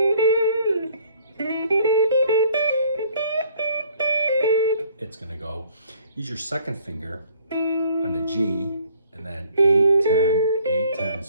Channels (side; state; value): both; inverted; correlation -0.59